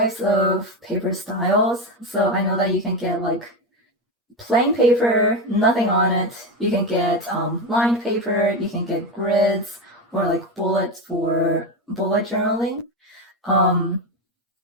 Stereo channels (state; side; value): normal; both; correlation 0.16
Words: of paper styles. So I know that you can get like plain paper, nothing on it. You can get lined paper. You can get grids or like bullets for bullet journaling. Um,